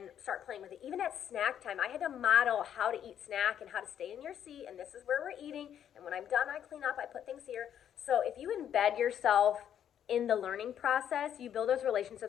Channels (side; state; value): right; quieter; 9.6 dB